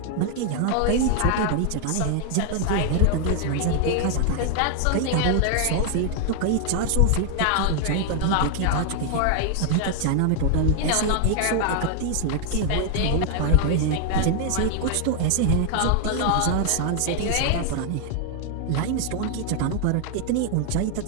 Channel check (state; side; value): different; both; correlation 0.00